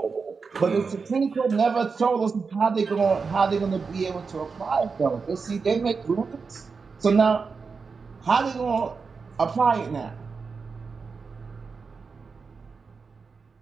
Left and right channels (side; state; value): left; quieter; 5.0 dB